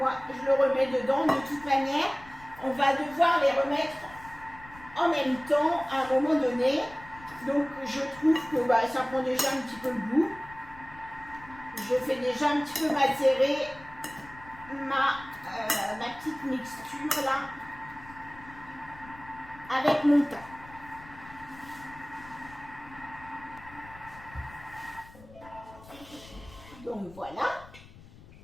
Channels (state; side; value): noise; left; rumble, 20 dB below the sound